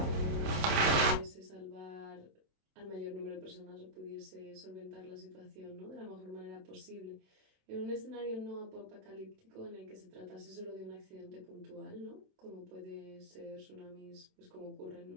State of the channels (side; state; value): left; late; 27 ms